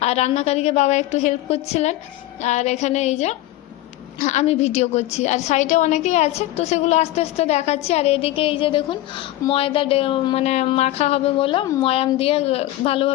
আর রান্নাকারীকে বাবা একটু হেল্প করছিলেন। আর এখানে এই যে আমি ভিডিও করছি, আর সাইডে অনেকেই আছে, তো সেগুলো আস্তে আস্তে দেখাচ্ছি। আর এদিকে এই যে দেখুন, ময়দা মানে মাখা হবে বলে ময়াম দিয়ে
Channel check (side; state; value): right; quieter; 15.7 dB